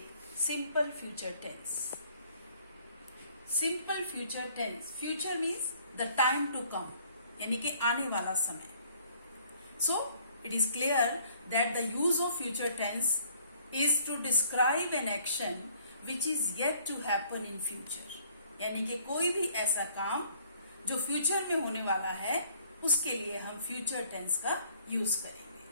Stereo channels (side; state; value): both; inverted; correlation -0.60